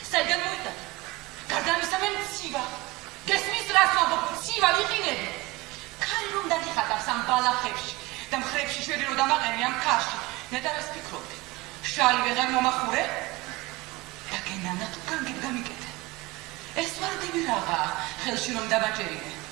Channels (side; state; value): left; quieter; 20.9 dB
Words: საიდან მოიტანა გარდა ამისა მე მცივა გესმის რას ვამბობ მცივა ვიყინები ქარი რომ დაგიხატავს ამ ბალახებში და მხრებში შვედი რომ დამაყენე ამ ქარში ნეტარ ეს ფიქრობდი შალი ვეღარ მომახურე და გენანა თუ განგებ გამიკეთე ეს ვარდები რაღა ხელში რომ დამაჭერინე